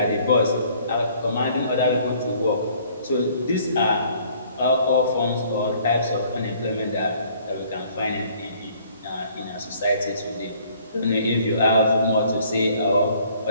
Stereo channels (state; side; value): inverted; both; correlation -0.59